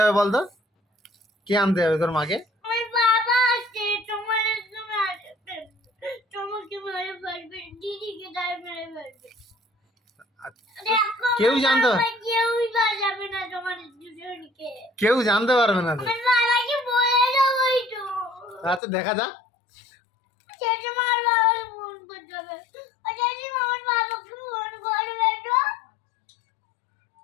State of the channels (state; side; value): drops out; right; at 18.8 s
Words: বলতো? কে আনতে হবে তোর মাকে? কেউ জানতে কেউ জানতে পারবে না তো। আচ্ছা দেখা যাক।